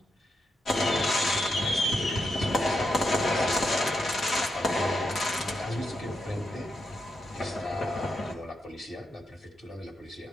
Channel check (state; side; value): normal; both; correlation 0.84